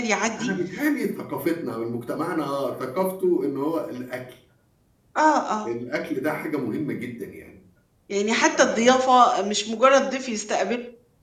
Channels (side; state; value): both; identical; correlation 1.00